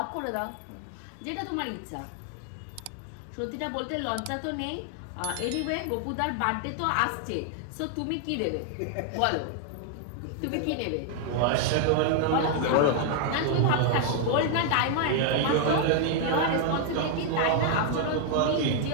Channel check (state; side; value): different; both; correlation 0.00